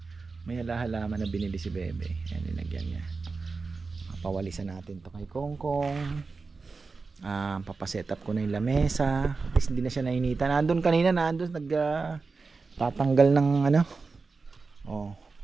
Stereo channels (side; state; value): left; quieter; 4.3 dB